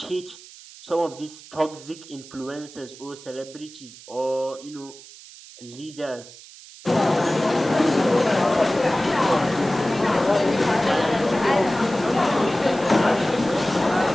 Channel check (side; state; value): right; noise; hiss, 19 dB below the sound